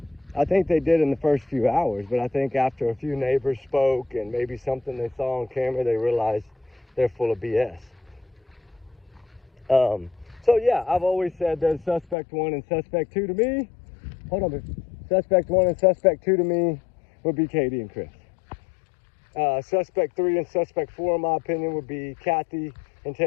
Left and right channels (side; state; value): right; drops out; at 12.2 s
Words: I think they did in the first few hours, but I think after a few neighbors spoke and maybe something they saw on camera, they realized they're full of BS. So yeah, I've always said there's suspect 1 and suspect 2 to me. Hold on, suspect 1 and suspect 2 to me would be Katie and Chris. Suspect 3 and suspect 4, in my opinion, would be Kathy and